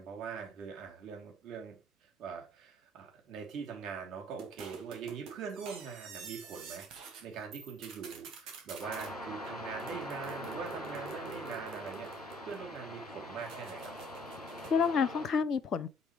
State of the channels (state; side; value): normal; both; correlation 0.58